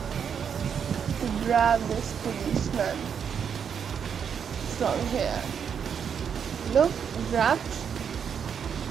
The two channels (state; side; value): quieter; left; 7.4 dB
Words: To grab this policeman from here. Look, wrapped.